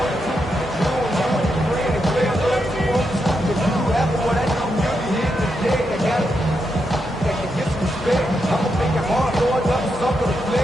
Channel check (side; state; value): both; normal; correlation 0.83